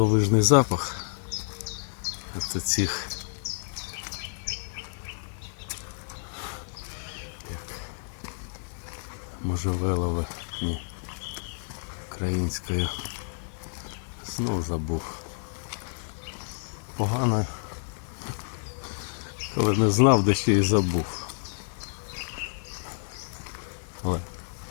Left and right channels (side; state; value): right; silent; 58 dB below the other